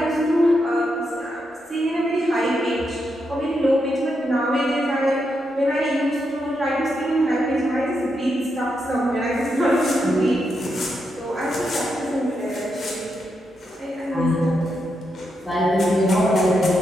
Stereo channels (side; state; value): both; normal; correlation 0.83